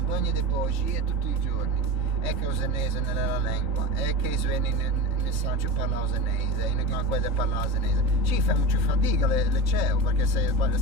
di bugie tutti i giorni. È che il senese nella lingua, è che i suoni nel Sancio parla senese, in Ganquede parla senese. Ci fa molto fatica le CEO, perché se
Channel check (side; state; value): left; late; 3.8 ms